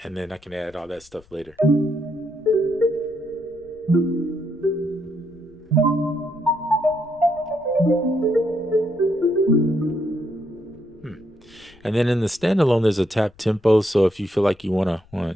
and then I can add all that stuff later. Hmm. And then in the standalone, there's a tap tempo. So if you feel like you want to,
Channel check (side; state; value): left; noise; rumble, 28 dB below the sound